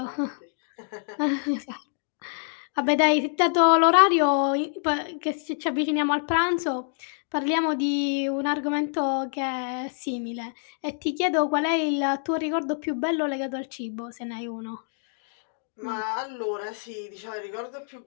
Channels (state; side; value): silent; right; digital silence